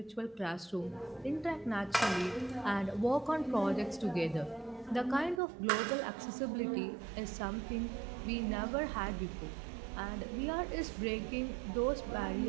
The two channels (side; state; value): left; drops out; at 5.4 s